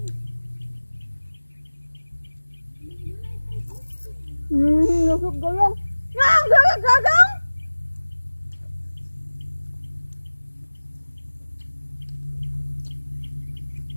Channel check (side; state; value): both; inverted; correlation -1.00